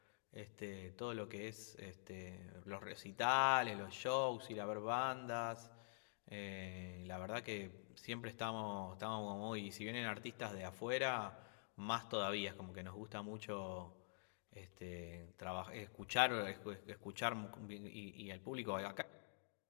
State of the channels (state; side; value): silent; right; digital silence